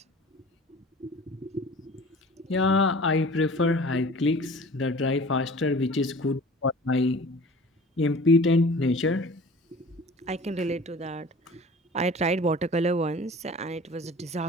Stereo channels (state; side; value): normal; both; correlation 0.43